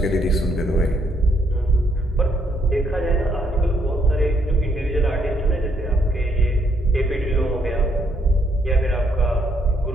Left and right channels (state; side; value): normal; both; correlation 0.72